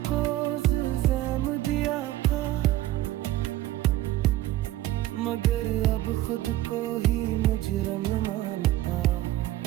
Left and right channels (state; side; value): quieter; left; 15.2 dB